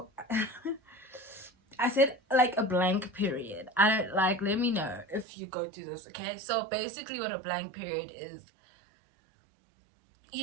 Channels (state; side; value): drops out; left; at 5.2 s